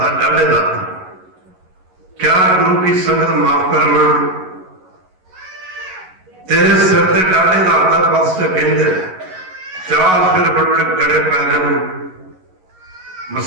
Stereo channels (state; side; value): late; left; 11 ms